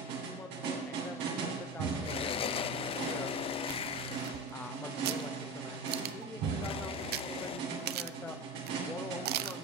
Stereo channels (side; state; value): both; normal; correlation 0.26